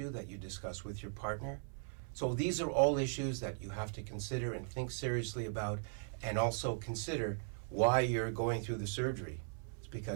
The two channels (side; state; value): left; silent; 52 dB below the other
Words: that you discuss with your partner. So these are all issues that you have to consider and think seriously about, and also consider why you're going through the surgery. It's